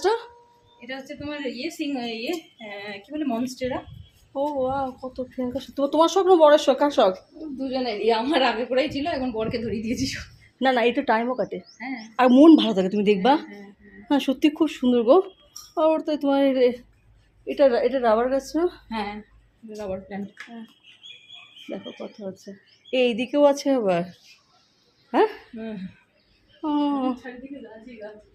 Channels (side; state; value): both; identical; correlation 1.00